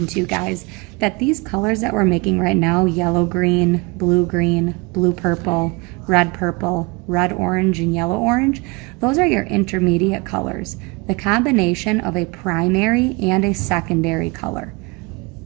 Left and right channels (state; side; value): quieter; left; 27.2 dB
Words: to you guys that these colors that we're making right now, yellow green, blue purple, red orange, and yellow orange, those are your intermediate colors. The combination of a primary and a secondary color.